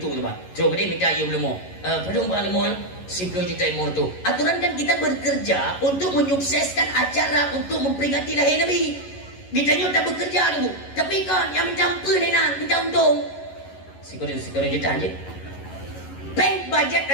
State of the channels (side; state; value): right; late; 11 ms